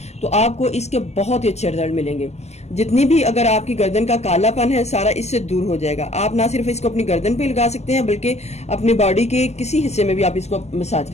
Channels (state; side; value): late; right; 0.32 ms